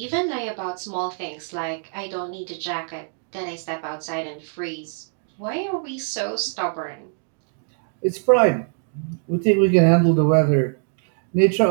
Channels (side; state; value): left; silent; 63 dB below the other